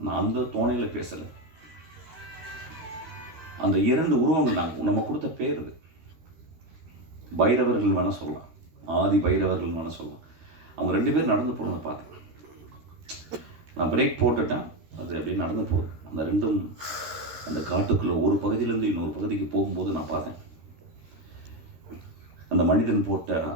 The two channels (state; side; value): late; left; 13 ms